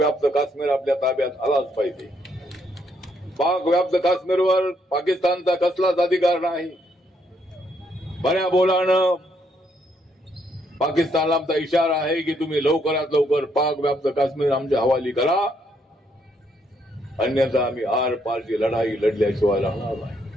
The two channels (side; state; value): both; normal; correlation 0.73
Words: काश्मीर आपल्या ताब्यात आलाच पाहिजे. पाक व्याप्त काश्मीरवर पाकिस्तानचा कसलाच अधिकार नाही. बऱ्या बोलानं पाकिस्तानला आमचा इशारा आहे की तुम्ही लवकरात लवकर पाक व्याप्त काश्मीर आमच्या हवाली करा, अन्यथा आम्ही आर पारची लढाई लढल्याशिवाय राहणार नाही.